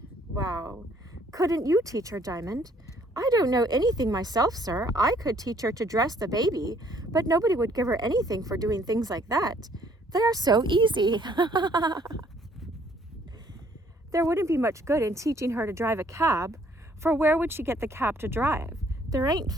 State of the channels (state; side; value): normal; both; correlation 0.63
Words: Wow. Couldn't you teach her, Diamond? I don't know anything myself, sir. I could teach her to dress the baby, but nobody would give her anything for doing things like that. They are so easy. There wouldn't be much good in teaching her to drive a cab, for where would she get the cab to drive? There ain't